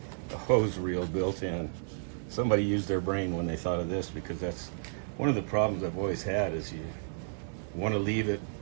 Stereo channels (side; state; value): left; silent; 56 dB below the other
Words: the hose reel built in. Somebody used their brain when they thought of this, because that's one of the problems I've always had, is you want to leave it